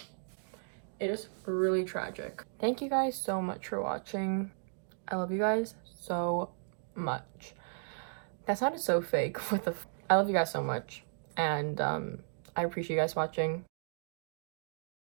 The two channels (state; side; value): silent; left; digital silence